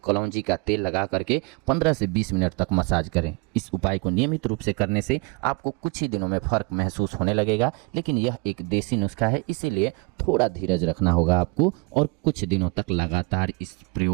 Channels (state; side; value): quieter; left; 29.1 dB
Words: कलौंजी का तेल लगा करके 15 से 20 मिनट तक मसाज करें। इस उपाय को नियमित रूप से करने से आपको कुछ ही दिनों में फर्क महसूस होने लगेगा, लेकिन यह एक देसी नुस्खा है, इसीलिए थोड़ा धीरज रखना होगा आपको और कुछ दिनों तक लगातार इस